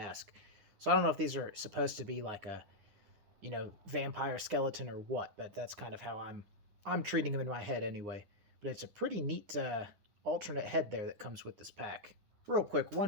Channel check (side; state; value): left; late; 9.8 ms